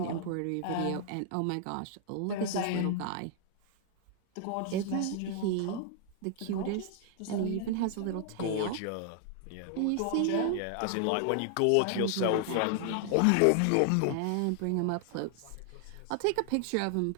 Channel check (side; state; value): both; different; correlation 0.00